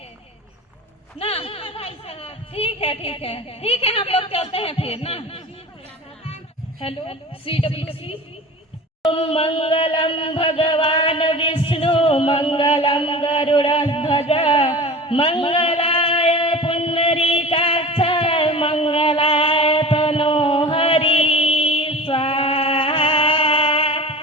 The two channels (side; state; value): both; normal; correlation 0.36